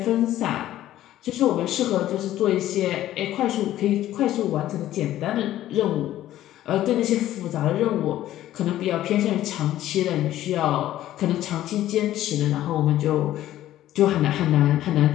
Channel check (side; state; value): right; quieter; 13.5 dB